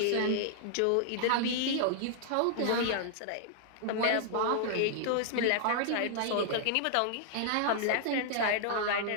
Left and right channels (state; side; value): different; both; correlation -0.01